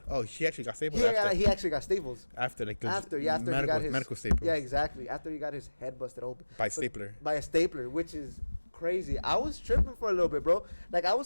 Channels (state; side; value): inverted; both; correlation -1.00